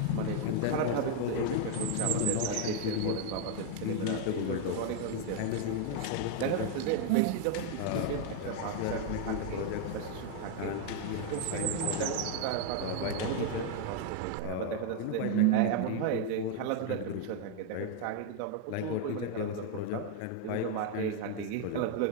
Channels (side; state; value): both; different; correlation 0.01